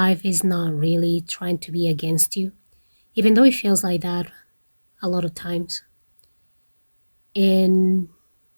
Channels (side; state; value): both; inverted; correlation -1.00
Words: is not really trying to be against you, even though it feels like that a lot of times. And